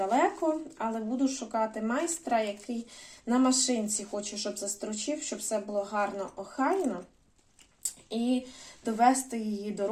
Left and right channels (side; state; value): both; identical; correlation 1.00